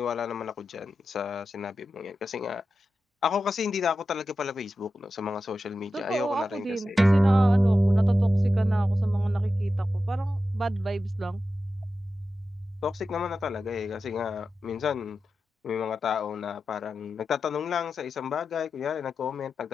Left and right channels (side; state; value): both; normal; correlation 0.91